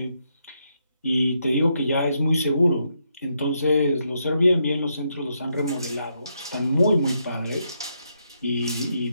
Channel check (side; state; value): both; inverted; correlation -0.79